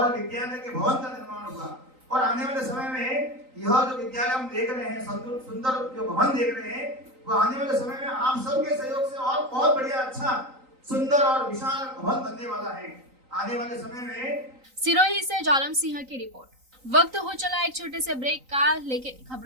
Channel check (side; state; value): left; late; 3.9 ms